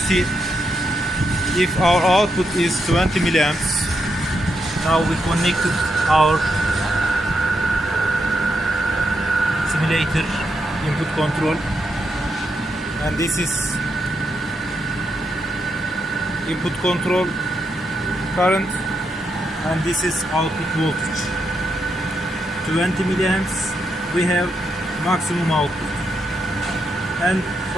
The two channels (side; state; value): both; normal; correlation 0.82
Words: if our output is 20 milliamps, now we connected our simulator input control, and this is input control current, and this is output voltage. 20 milliamps we have maximum output. And